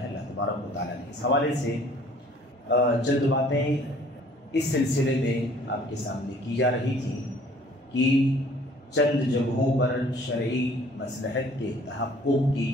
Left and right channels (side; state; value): both; normal; correlation 0.55